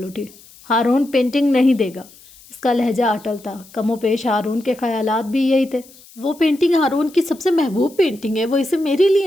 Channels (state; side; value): noise; left; hiss, 24 dB below the sound